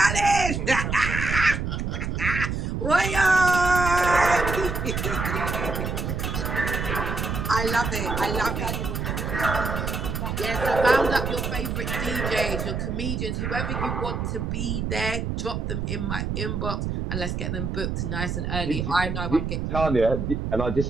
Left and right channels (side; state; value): right; noise; rumble, 2 dB below the sound